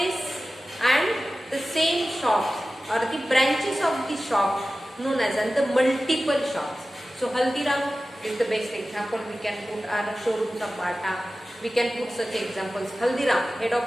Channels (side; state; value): both; normal; correlation 0.95